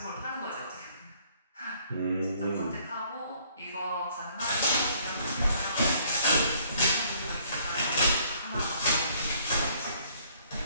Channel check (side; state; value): both; inverted; correlation -0.62